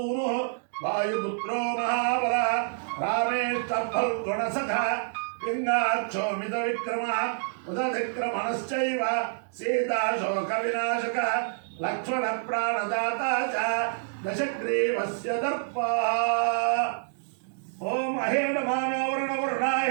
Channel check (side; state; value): left; silent; digital silence